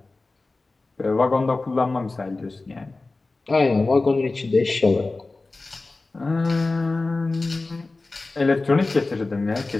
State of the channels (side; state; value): right; quieter; 3.4 dB